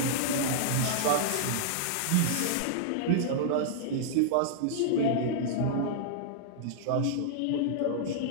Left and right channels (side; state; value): both; different; correlation -0.02